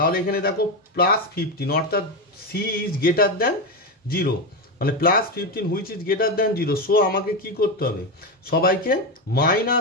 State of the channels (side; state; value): both; normal; correlation 0.13